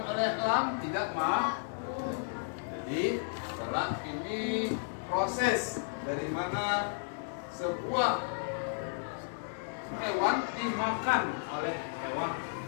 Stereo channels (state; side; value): silent; right; 56 dB below the other